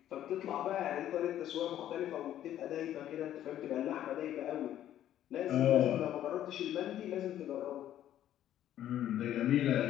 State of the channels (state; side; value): quieter; right; 11.8 dB